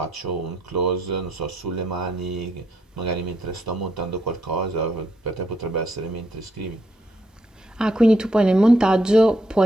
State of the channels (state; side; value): normal; both; correlation 0.75